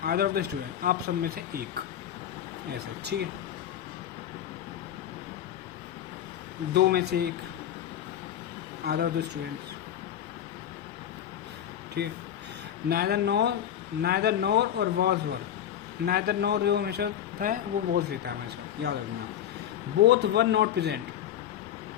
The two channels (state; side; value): quieter; right; 10.5 dB